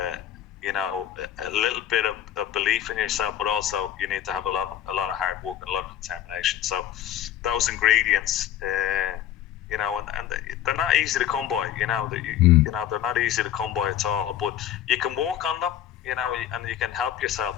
little bit of belief in yourself, but also you need to have a lot of hard work and a lot of determination. So those ingredients, and they're not easy to come by. They're not easy to come by at all. But you can work on them. you know, and you can help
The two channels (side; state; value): right; quieter; 11.2 dB